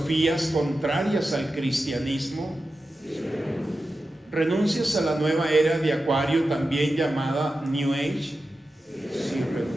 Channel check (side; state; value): both; normal; correlation 0.92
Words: contrarias al cristianismo? Sí, ¿renuncias a la nueva era de Acuario, también llamada New Age? Sí,